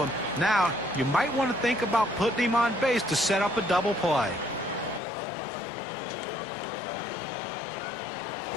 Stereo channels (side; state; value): right; drops out; at 5.0 s